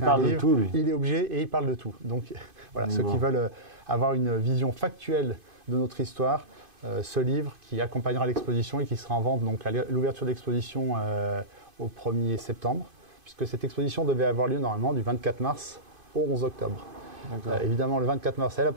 un livre, il est obligé et il parle de tout. Donc voilà, ceux qui veulent avoir une vision factuelle de notre histoire, ce livre qui accompagnera l'exposition et qui sera en vente donc à l'ouverture de l'exposition au 1er septembre, puisque cette exposition devait avoir lieu normalement du 24 mars au 11 octobre. Évidemment, le 24 mars, elle n'a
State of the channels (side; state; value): left; late; 2.5 ms